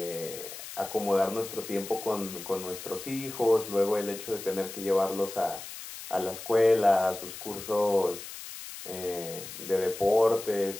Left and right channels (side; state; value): left; noise; hiss, 11 dB below the sound